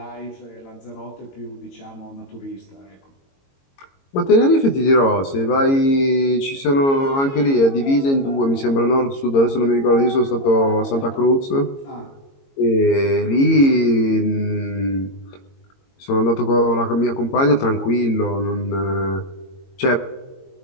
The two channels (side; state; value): right; late; 22 ms